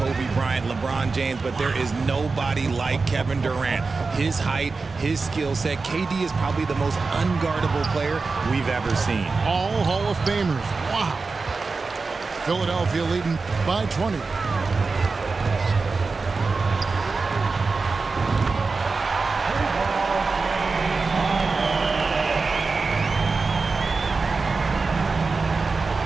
Bryant, LeBron James, but there is nobody like Kevin Durant. His height, his skill set. KD is probably the most unguardable player we've ever seen. All Hall of Famers. Wow. Philadelphia leading by 20.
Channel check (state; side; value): quieter; left; 4.2 dB